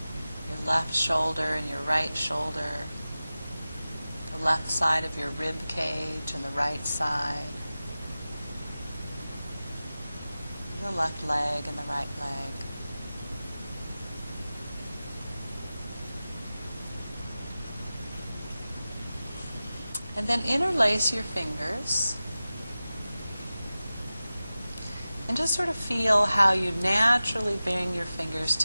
Your left shoulder and your right shoulder. The left side of your rib cage and the right side. The left leg and the right leg. And then interlace your fingers. And just sort of feel how you naturally bring your fingers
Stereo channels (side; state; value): both; inverted; correlation -0.96